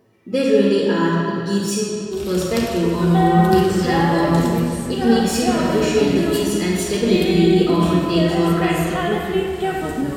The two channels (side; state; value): both; identical; correlation 1.00